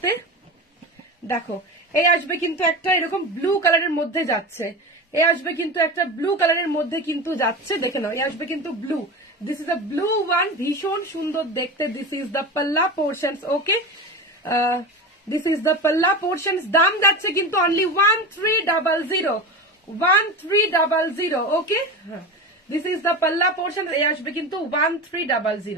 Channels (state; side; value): normal; both; correlation 0.26